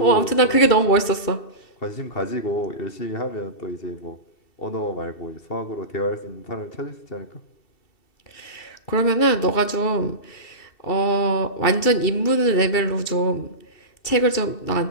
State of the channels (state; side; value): late; right; 2.7 ms